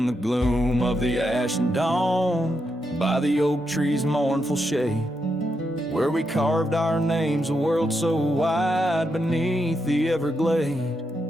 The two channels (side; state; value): both; normal; correlation 0.83